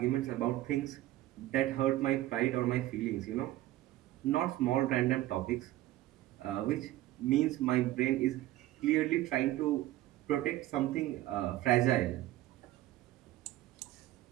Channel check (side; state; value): left; quieter; 15.5 dB